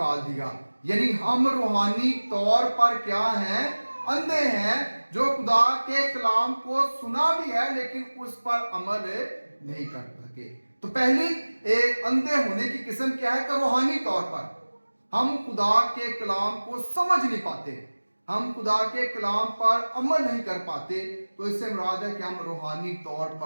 दिया। यानी हम रूहानी तौर पर क्या हैं? अंधे हैं, जो खुदा के कलाम को सुना भी है लेकिन उस पर अमल नहीं कर सके। तो पहली अंधे होने की किस्म क्या है? कि रूहानी तौर पर हम खुदा के कलाम को समझ नहीं पाते, हम खुदा के कलाम पर अमल नहीं कर पाते। तो इससे मुराद है कि हम रूहानी तौर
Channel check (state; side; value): inverted; both; correlation -1.00